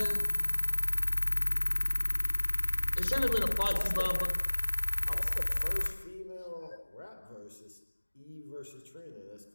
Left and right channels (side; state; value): both; inverted; correlation -1.00